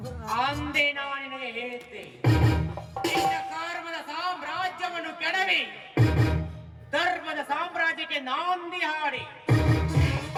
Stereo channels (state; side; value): identical; both; correlation 1.00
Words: ಅಂದೇ ನಾನು ನಿನಗೆ ಹೇಳಿದ್ದೆ ನಿನ್ನ ಕರ್ಮದ ಸಾಮ್ರಾಜ್ಯವನ್ನು ಕೆಡವಿ ಧರ್ಮದ ಸಾಮ್ರಾಜ್ಯಕ್ಕೆ ನಾಂದಿ ಹಾಡಿ